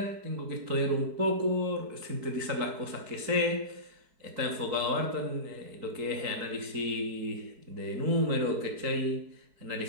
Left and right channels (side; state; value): left; late; 4.6 ms